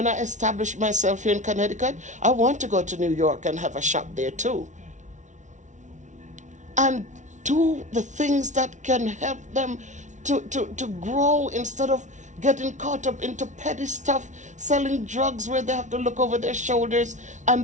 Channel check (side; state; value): left; late; 0.36 ms